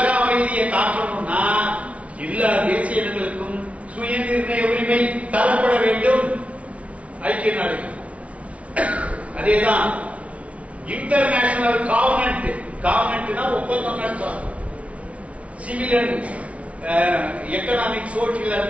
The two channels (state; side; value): late; left; 0.064 ms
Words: அமைதியை காக்கணும்னா எல்லா தேசிய இனங்களுக்கும் சுயநிர்ணய உரிமை தரப்பட வேண்டும். ஐக்கிய நாடுகள் அதேதான். இன்டர்நேஷனல் காவனன்ட்னா ஒப்பந்தம் நடத்தும். Civil and economic, social